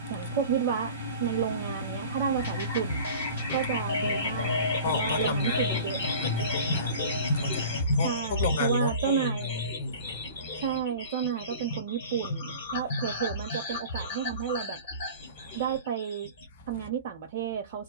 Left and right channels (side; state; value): both; inverted; correlation -0.40